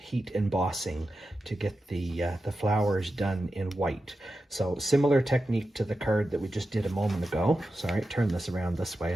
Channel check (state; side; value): normal; both; correlation 0.91